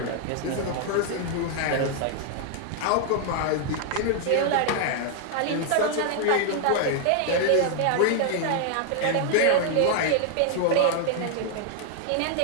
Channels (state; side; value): different; both; correlation 0.00